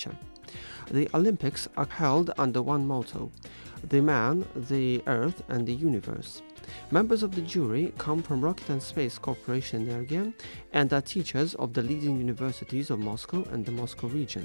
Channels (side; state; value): both; inverted; correlation -1.00